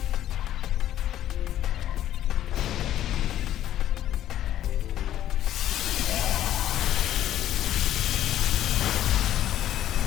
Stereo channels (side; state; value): right; quieter; 12.1 dB